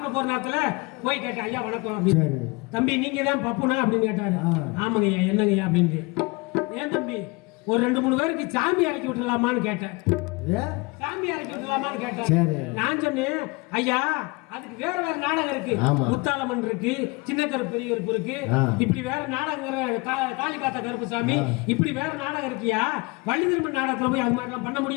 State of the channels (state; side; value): quieter; right; 26.5 dB